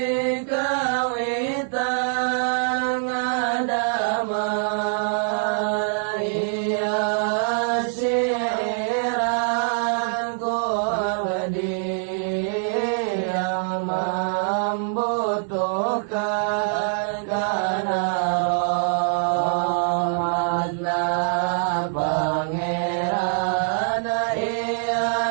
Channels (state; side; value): silent; left; 57 dB below the other